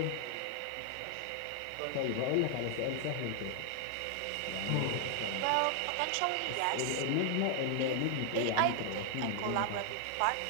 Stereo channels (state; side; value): different; both; correlation 0.00